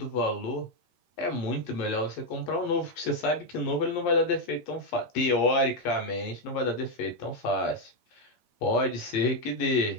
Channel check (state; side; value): late; right; 8.5 ms